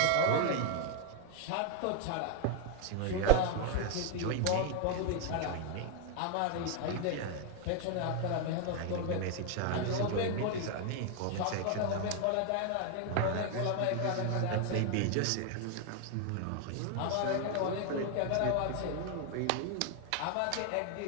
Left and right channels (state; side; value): different; both; correlation 0.01